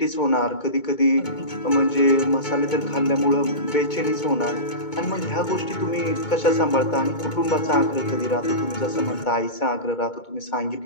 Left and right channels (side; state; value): right; late; 2.2 ms